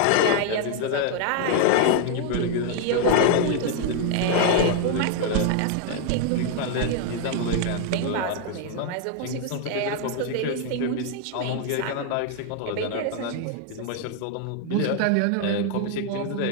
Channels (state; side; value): different; both; correlation 0.00